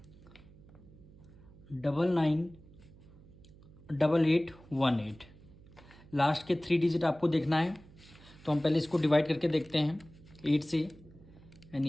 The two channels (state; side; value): noise; right; hum, 22 dB below the sound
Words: 99 88 18, लास्ट के 3 डिजिट आपको देखना है, तो हम पहले इसको डिवाइड करके देखते हैं 8 से,